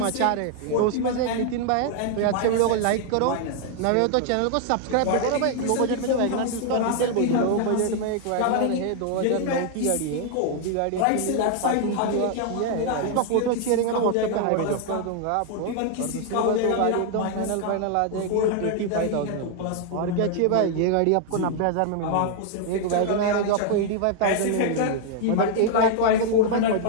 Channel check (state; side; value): different; both; correlation 0.00